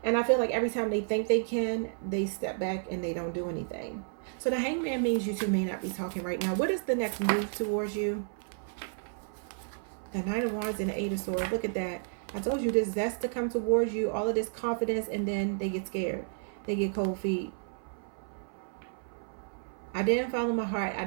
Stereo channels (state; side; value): silent; left; 57 dB below the other